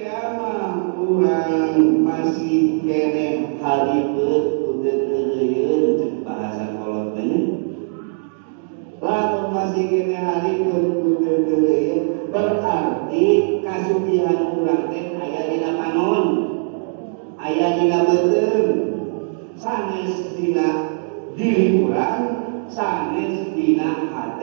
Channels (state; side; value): silent; left; 66 dB below the other